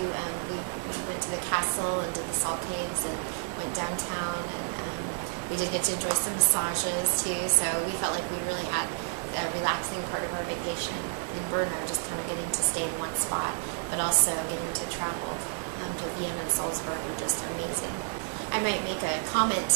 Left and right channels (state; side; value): silent; left; 58 dB below the other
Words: we went to the castle and did the salt caves and went downtown, and we did get to enjoy some massages too. So we felt like we really had a relaxing part of our vacation in Brno, just kind of getting to stay in one spot, but also getting to travel to Vienna and Salzburg were just amazing. I might make a comment